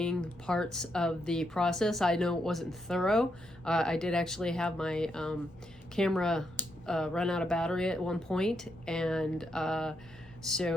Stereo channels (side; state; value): both; normal; correlation 0.80